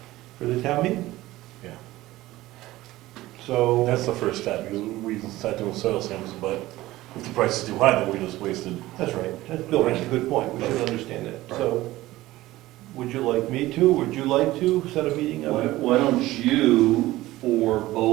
for the town meeting. Yeah. So. That's the first step, because we can start doing soil samples, but if the price is too high, then we just wasted. That's right. Bill makes a good point. We should understand that. So, would you like me to? Would you like to set a meeting up? Why don't you, for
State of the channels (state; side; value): quieter; left; 17.1 dB